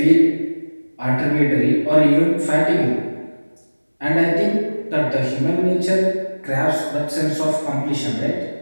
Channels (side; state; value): both; inverted; correlation -1.00